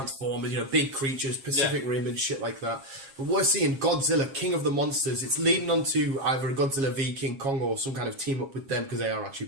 big creatures, Pacific Rim and shit like that. But we're seeing Godzilla King of the Monsters. It's leading on to either a Godzilla v King Kong or some kind of team up with them because they are actually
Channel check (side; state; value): left; late; 7.4 ms